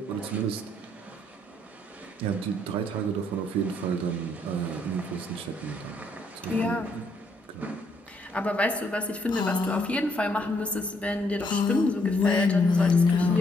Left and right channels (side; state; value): both; normal; correlation 0.71